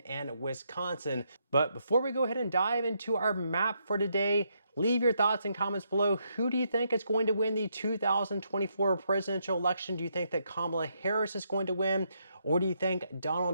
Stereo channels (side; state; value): both; inverted; correlation -0.77